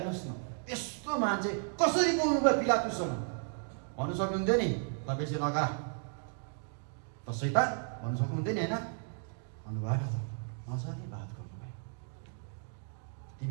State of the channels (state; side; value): silent; left; 55 dB below the other